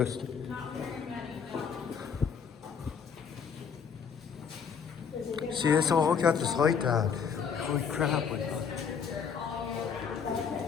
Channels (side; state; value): right; quieter; 6.7 dB